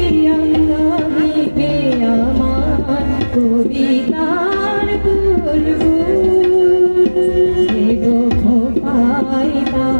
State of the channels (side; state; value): both; inverted; correlation -1.00